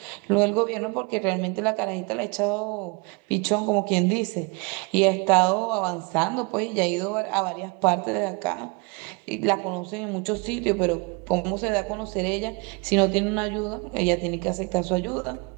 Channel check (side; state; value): left; quieter; 30.4 dB